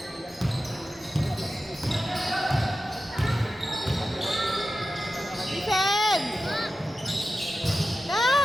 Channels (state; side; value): normal; both; correlation 0.92